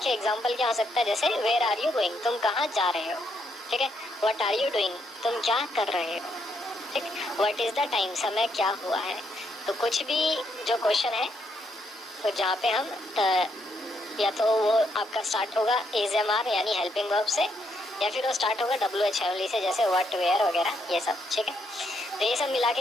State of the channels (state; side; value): normal; both; correlation 0.76